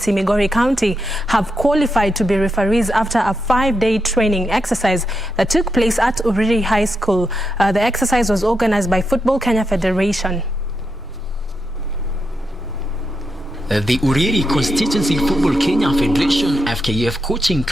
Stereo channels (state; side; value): noise; left; hum, 27 dB below the sound